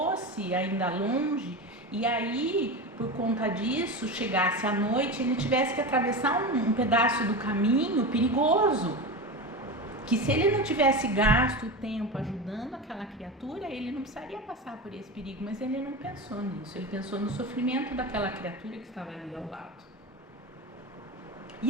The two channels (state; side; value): normal; both; correlation 0.23